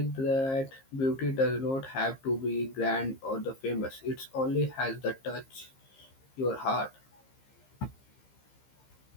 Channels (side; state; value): right; late; 15 ms